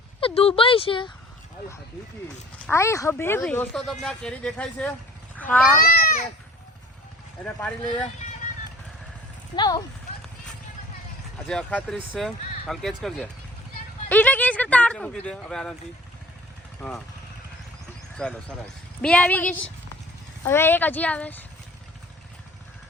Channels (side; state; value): both; normal; correlation 0.48